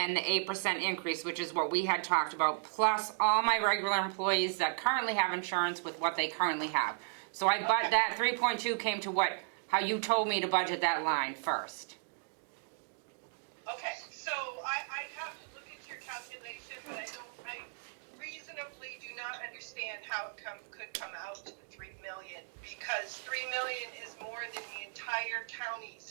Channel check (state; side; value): silent; left; digital silence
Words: the 8% increase, which is what we had talked about, plus all my regular employees that currently have insurance with what they currently have. So that 3.2 came to how you told me to budget that line first. Okay, so I have to look at your calculation, but I reasonably do not understand how it could come out to 3 million, because 3 million is more than the entire